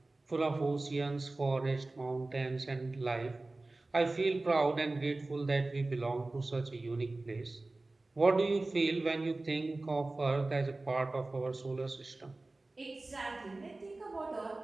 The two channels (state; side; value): quieter; left; 3.1 dB